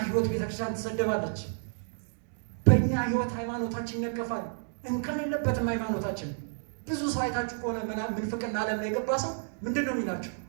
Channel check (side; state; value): left; silent; digital silence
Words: ህይወት ቤተክርስቲያን ትሰደባለች። በእኛ ህይወት ሃይማኖታችን ይነቀፋል። እንከን የለበትም ሃይማኖታችን። ብዙ ሰው አይታችሁ ከሆነ ምንፍቅና ዓለም ላይ የገባ ሰው ምንድን ነው የሚላቸው?